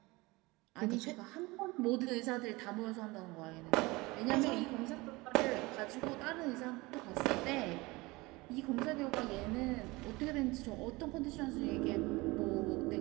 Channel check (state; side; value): quieter; left; 22.8 dB